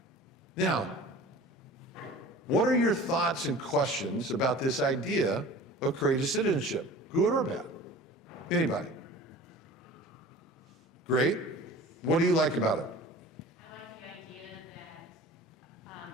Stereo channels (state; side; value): normal; both; correlation 0.42